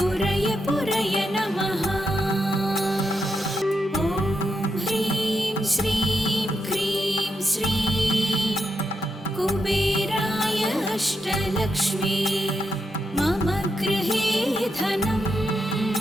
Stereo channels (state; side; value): normal; both; correlation 0.84